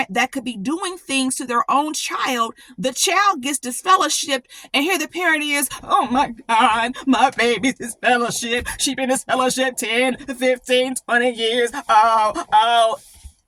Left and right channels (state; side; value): identical; both; correlation 1.00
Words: that could be doing things to their own child. The child gets disfellowshipped, and here the parent is, oh my God, my baby's disfellowshipped. She's been disfellowshipped 10, 15, 20 years. Oh.